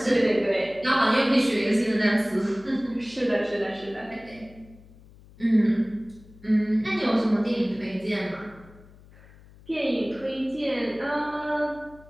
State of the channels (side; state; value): left; noise; hum, 23 dB below the sound